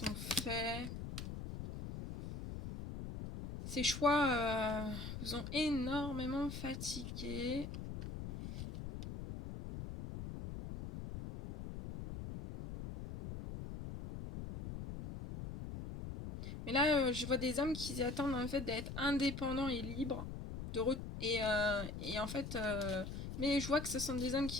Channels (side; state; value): left; noise; rumble, 7 dB below the sound